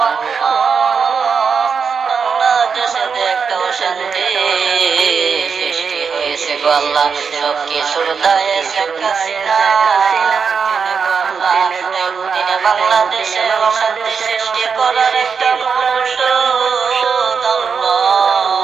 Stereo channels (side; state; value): left; quieter; 5.9 dB